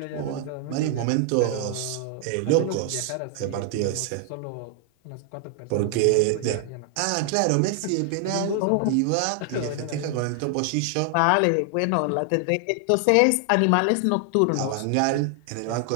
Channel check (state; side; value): different; both; correlation 0.00